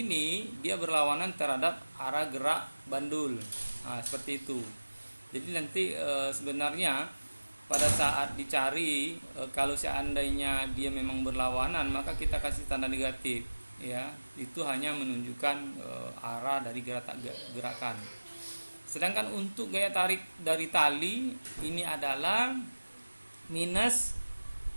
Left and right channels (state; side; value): inverted; both; correlation -1.00